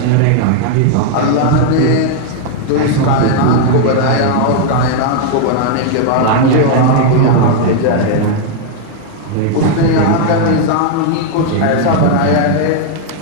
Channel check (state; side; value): different; both; correlation 0.00